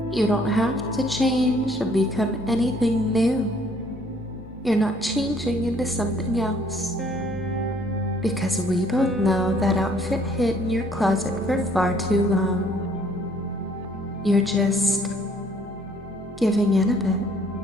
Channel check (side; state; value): both; normal; correlation 0.61